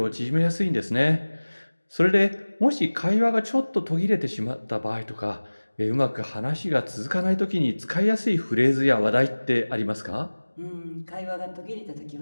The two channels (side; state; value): both; inverted; correlation -1.00